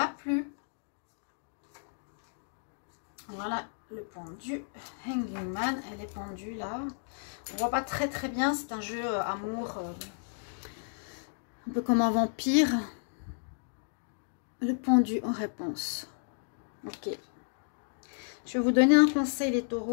plus. Voilà le pendu. Hanging Man, elle est pendue là. On voit pas très très bien, c'est un jeu amour, un peu comme un vampire. Le pendu en réponse. Ok. Je vais vous donner un conseil les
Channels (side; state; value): right; silent; digital silence